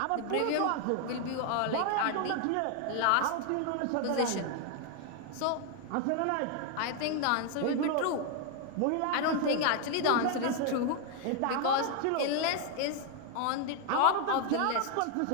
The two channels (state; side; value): different; both; correlation 0.00